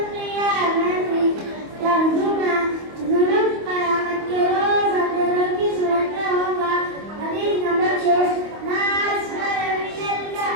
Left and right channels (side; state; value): left; late; 25 ms